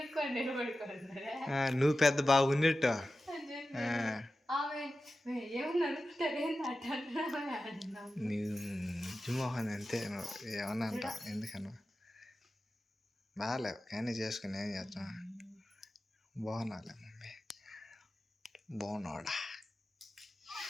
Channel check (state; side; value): normal; both; correlation 0.94